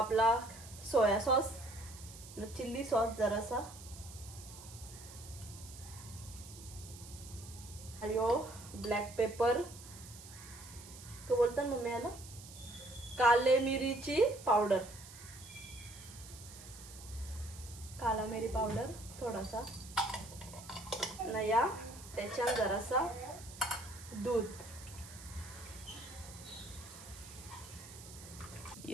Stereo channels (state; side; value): noise; right; hiss, 16 dB below the sound